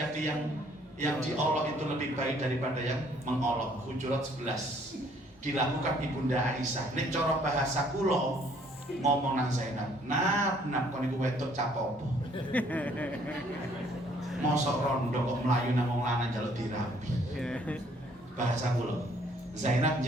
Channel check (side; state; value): both; normal; correlation 0.62